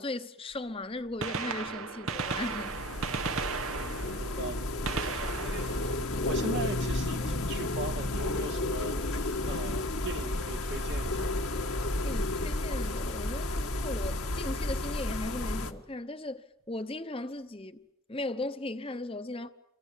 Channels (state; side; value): normal; both; correlation 0.48